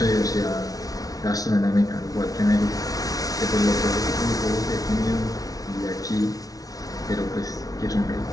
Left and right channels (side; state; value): right; late; 0.18 ms